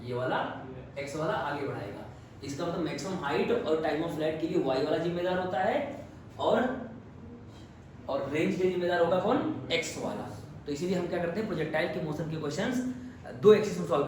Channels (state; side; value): identical; both; correlation 1.00